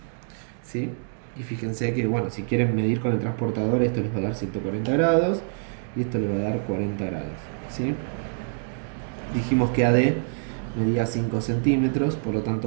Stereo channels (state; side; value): silent; left; digital silence